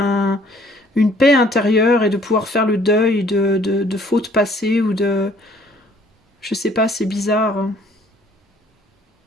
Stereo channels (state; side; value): normal; both; correlation 0.59